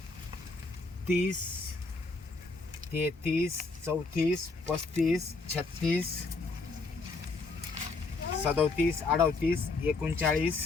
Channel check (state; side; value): quieter; right; 3.8 dB